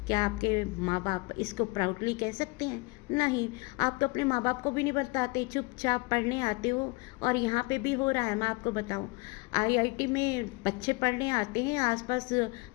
क्या आपके माँ बाप इसको प्राउडली कह सकते हैं? नहीं। आप तो अपने माँ बाप को भी नहीं बताते, चुपचाप पढ़ने आते हो। और यहाँ पे भी हो रहा है, मैं आपको बताऊँ, आईआईटी में बच्चे पढ़ने आते हैं, आसपास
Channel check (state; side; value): quieter; right; 26.2 dB